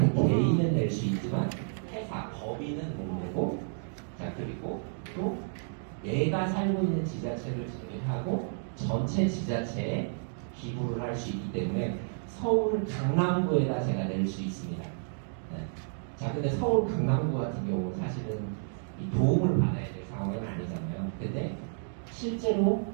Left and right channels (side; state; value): left; silent; digital silence